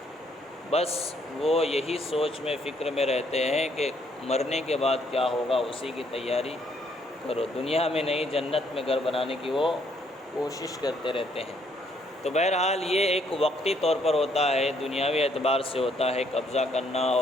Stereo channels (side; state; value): both; normal; correlation 0.69